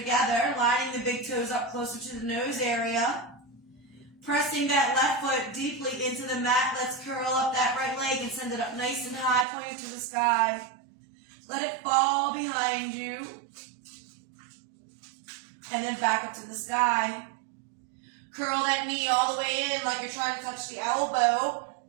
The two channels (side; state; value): left; drops out; at 9.5 s